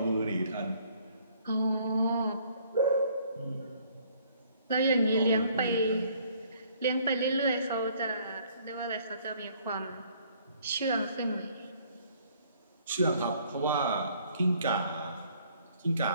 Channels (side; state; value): both; inverted; correlation -0.61